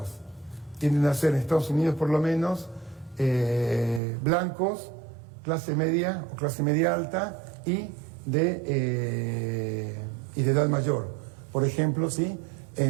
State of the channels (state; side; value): drops out; left; at 4.0 s